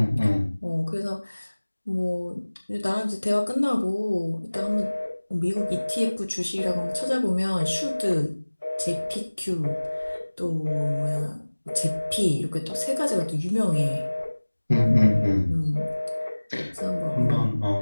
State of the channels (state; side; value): inverted; both; correlation -1.00